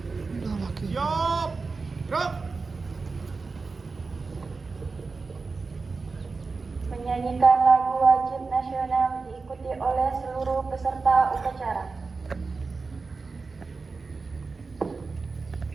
Siap. Gerak. Menyanyikan lagu wajib nasional diikuti oleh seluruh peserta upacara.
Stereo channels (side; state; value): left; quieter; 4.2 dB